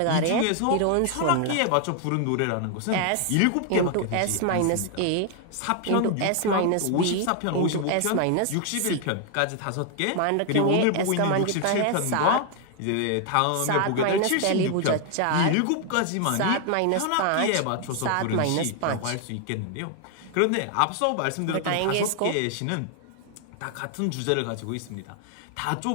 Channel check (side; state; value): both; different; correlation 0.00